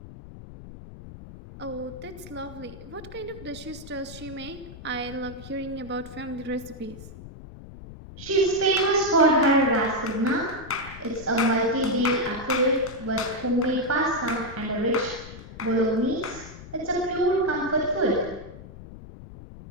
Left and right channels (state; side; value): noise; left; rumble, 15 dB below the sound